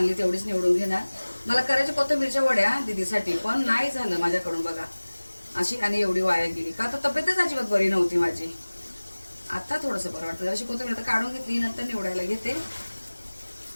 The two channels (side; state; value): both; inverted; correlation -1.00